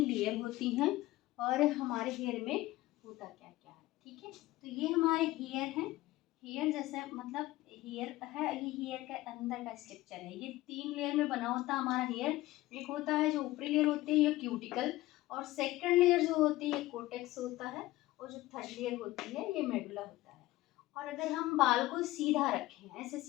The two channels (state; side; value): quieter; right; 17.7 dB